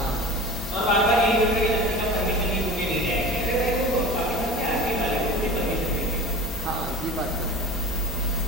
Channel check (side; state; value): both; normal; correlation 0.35